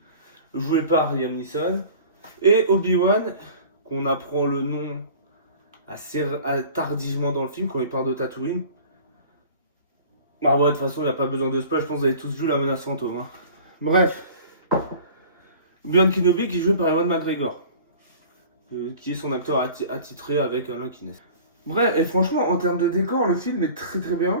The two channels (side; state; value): both; inverted; correlation -0.44